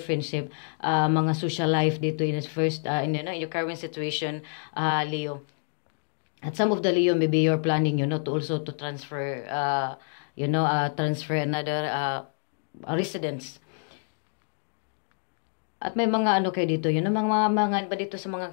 mga social life dito in first, in your current situation, Leo. At some of the Leo, maybe you're planning, to also to transfer, transfer another residence. At may mga ano kayo dito, mga ba dito sa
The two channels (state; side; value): silent; right; 60 dB below the other